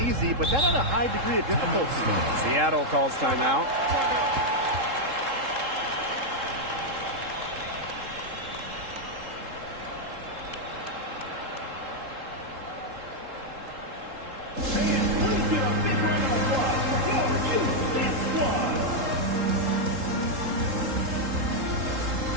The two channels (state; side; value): late; left; 3.7 ms